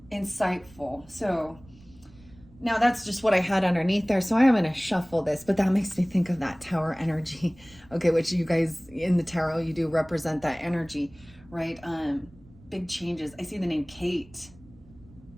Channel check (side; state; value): right; noise; rumble, 24 dB below the sound